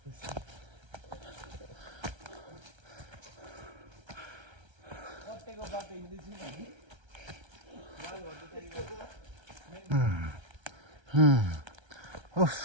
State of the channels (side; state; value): left; late; 1.3 ms